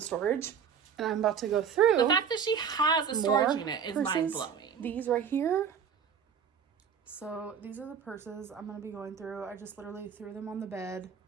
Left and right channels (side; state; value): left; quieter; 7.2 dB